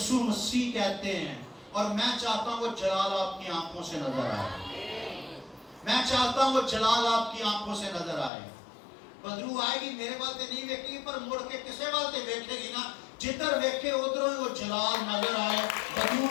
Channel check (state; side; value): drops out; right; at 8.3 s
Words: مسیح کہتے ہیں. اور میں چاہتا ہوں وہ جلال آپ کی آنکھوں سے نظر آئے. میں چاہتا ہوں وہ جلال آپ کی آنکھوں سے نظر آئے. بدرو آئے گی میرے والتے نہیں ویکھے گی, پر مڑ کے کسے والتے ویکھے گی نا, جدھر ویکھے ادھروں وہ جلال نظر آئے. بدرو